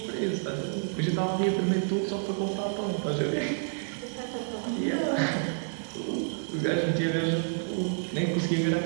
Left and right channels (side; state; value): left; silent; digital silence